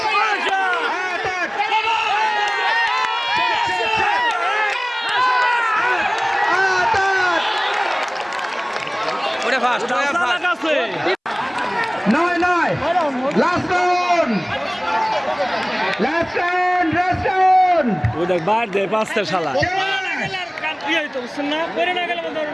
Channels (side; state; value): both; identical; correlation 1.00